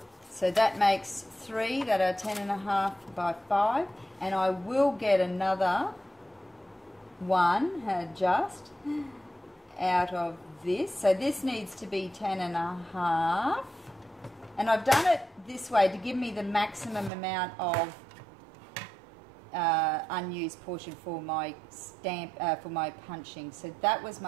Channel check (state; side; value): drops out; left; at 17.1 s